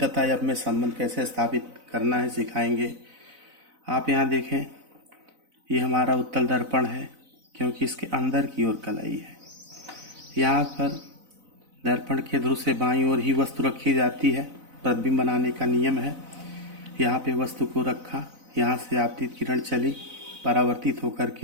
एफ में संबंध कैसे स्थापित करना है सिखाएंगे। आप यहाँ देखें, ये हमारा उत्तल दर्पण है क्योंकि इसके अंदर की ओर कलाई है। यहाँ पर दर्पण के ध्रुव से बाईं ओर ही वस्तु रखी जाती है। प्रतिबिंब बनाने का नियम है। यहाँ पे वस्तु को रखा, यहाँ से आपतित किरण चली, परावर्तित होकर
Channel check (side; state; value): left; late; 4.0 ms